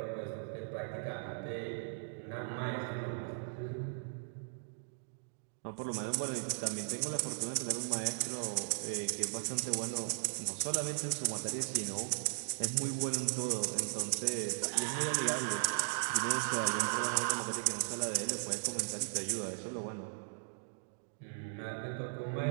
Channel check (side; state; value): left; silent; digital silence